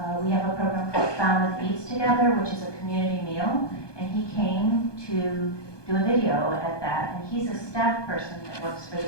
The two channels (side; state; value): right; late; 1.2 ms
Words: We have a program called Falmouth Eats Together, which is a community meal, and he came to do a video at that, and he's a staff person that works for